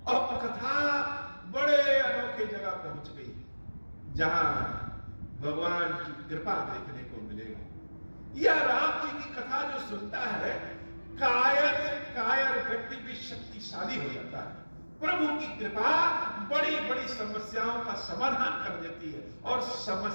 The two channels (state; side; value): inverted; both; correlation -1.00